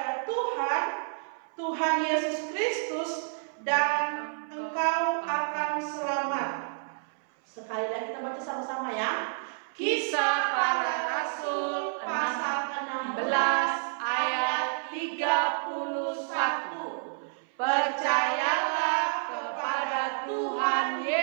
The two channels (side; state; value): left; silent; 58 dB below the other